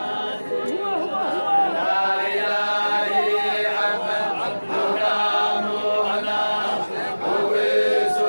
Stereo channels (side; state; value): both; inverted; correlation -1.00